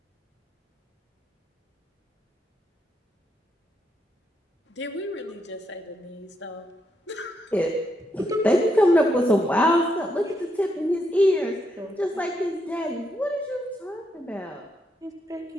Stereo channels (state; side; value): normal; both; correlation 0.80